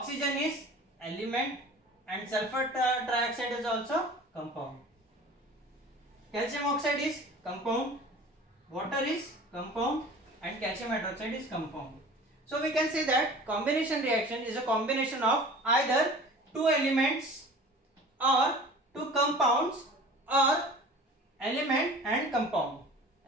is element and sulfur trioxide is also compound. Calcium oxide is compound, water is compound and calcium hydroxide is compound. So we can say that combination reaction is a combination of either two elements or two compounds और element and compound,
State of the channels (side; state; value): both; normal; correlation 0.42